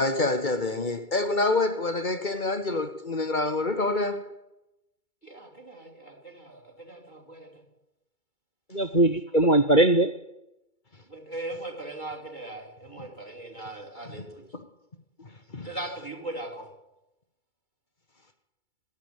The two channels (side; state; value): right; late; 2.3 ms